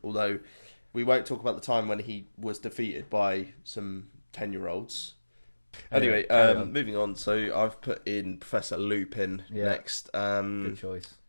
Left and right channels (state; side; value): inverted; both; correlation -1.00